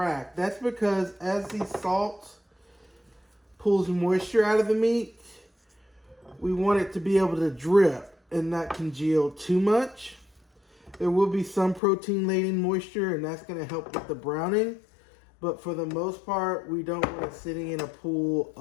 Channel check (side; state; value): right; drops out; at 11.8 s